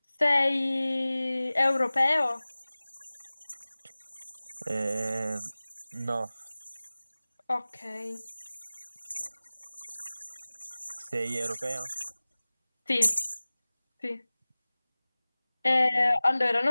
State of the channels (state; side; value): inverted; both; correlation -0.99